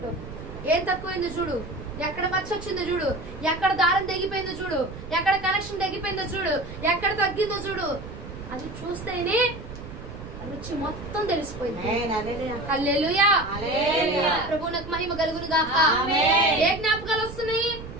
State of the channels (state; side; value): noise; right; rumble, 12 dB below the sound